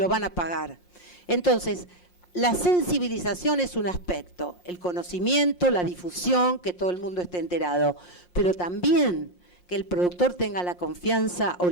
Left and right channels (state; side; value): late; right; 5.6 ms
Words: van a pagar. Entonces, la sensibilización es un aspecto, el conocimiento, la difusión, que todo el mundo esté enterado, pero también que el productor tenga la confianza o